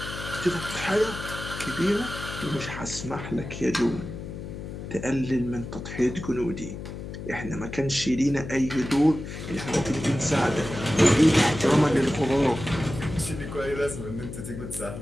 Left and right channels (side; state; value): left; noise; hum, 9 dB below the sound